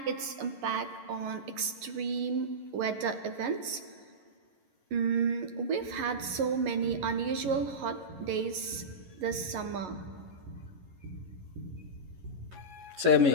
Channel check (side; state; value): left; late; 11 ms